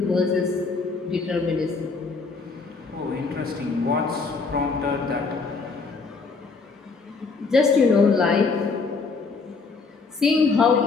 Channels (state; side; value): quieter; right; 4.4 dB